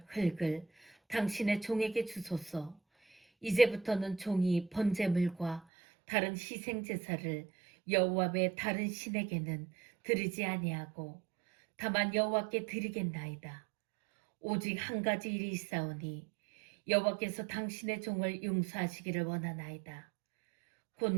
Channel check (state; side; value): drops out; left; at 5.6 s